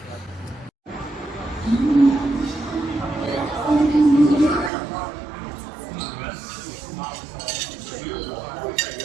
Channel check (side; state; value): left; drops out; at 4.7 s